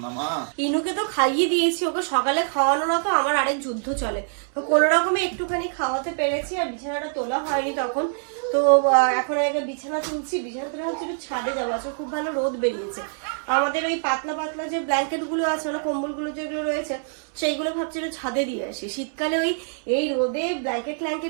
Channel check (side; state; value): left; silent; 62 dB below the other